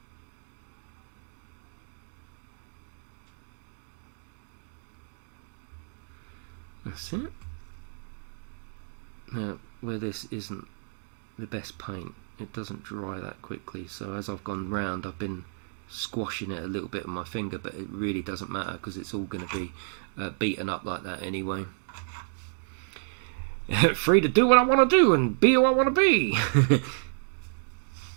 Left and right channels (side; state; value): left; silent; digital silence